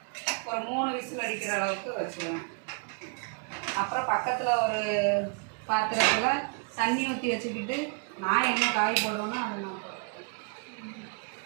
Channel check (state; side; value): quieter; left; 37.1 dB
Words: ஒரு 3 விசில் அடிக்கிற அளவுக்கு வச்சுருவேன். அப்புறம் பக்கத்தில் ஒரு பாத்திரத்தில் தண்ணி ஊற்றி வச்சுக்கிட்டு நான் என்ன காய் போடுவேன்னா அது நான் போடுவேன்.